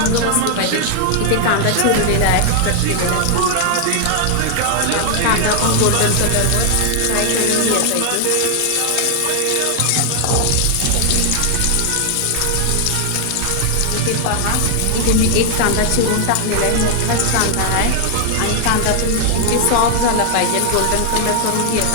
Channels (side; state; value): both; different; correlation 0.00